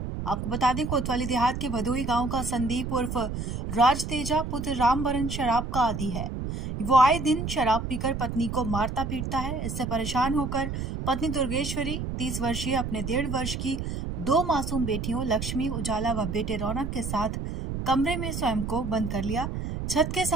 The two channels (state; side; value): noise; right; rumble, 4 dB below the sound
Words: आपको बता दें, कोतवाली देहात के भदोही गांव का संदीप उर्फ राज तेजा पुत्र रामबरन शराब का आदी है। वो आए दिन शराब पीकर पत्नी को मारता पीटता है। इससे परेशान होकर पत्नी दुर्गेश्वरी 30 वर्षीय अपने 1.5 वर्ष की 2 मासूम बेटियों लक्ष्मी उजाला व बेटे रौनक के साथ कमरे में स्वयं को बंद कर लिया। छत के